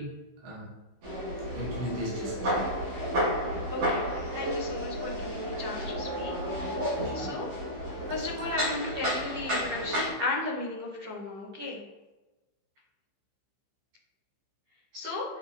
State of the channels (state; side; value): late; left; 15 ms